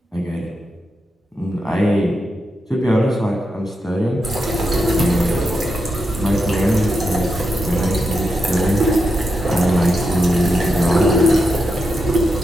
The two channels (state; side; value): normal; both; correlation 0.86